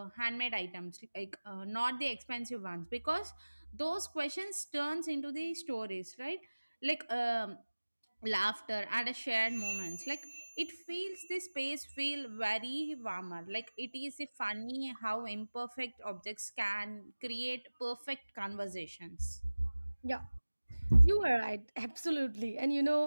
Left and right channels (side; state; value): both; inverted; correlation -1.00